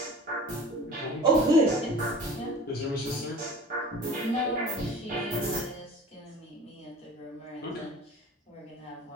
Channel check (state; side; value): normal; both; correlation 0.42